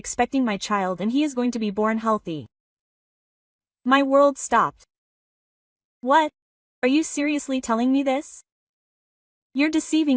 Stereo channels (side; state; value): both; identical; correlation 1.00